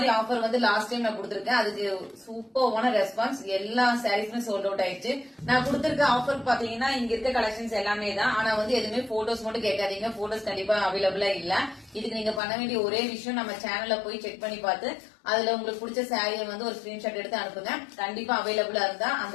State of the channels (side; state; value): right; drops out; at 12.4 s